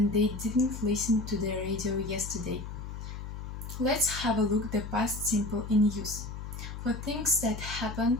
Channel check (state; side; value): noise; left; hum, 8 dB below the sound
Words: they didn't listen to the radio yesterday. Let's have a look at the past simple in use. For things that